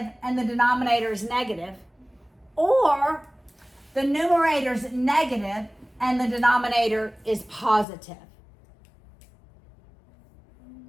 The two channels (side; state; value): right; drops out; at 7.9 s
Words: and the denominator is negative, or the numerator is negative and the denominator is positive.